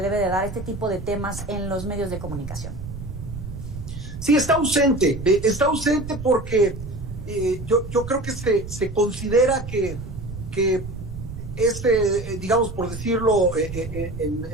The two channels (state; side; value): noise; right; rumble, 9 dB below the sound